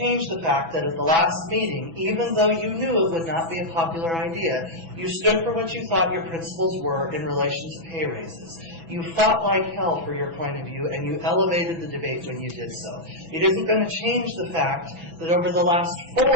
the fact that at the last meeting, even though you knew it would not be a popular idea, you stood for what you thought your principles were in relation to pay raises. You fought like hell for your point of view, and you elevated the debate when you did so. It isn't going to change the fact that over the last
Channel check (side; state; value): left; late; 6.0 ms